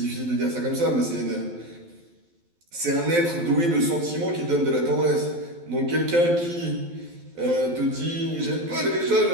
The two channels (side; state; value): left; late; 12 ms